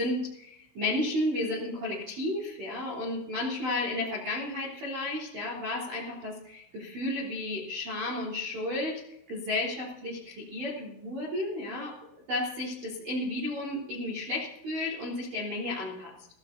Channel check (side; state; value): left; late; 16 ms